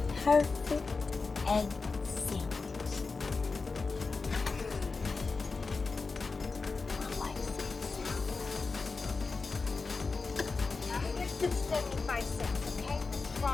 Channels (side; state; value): right; quieter; 4.2 dB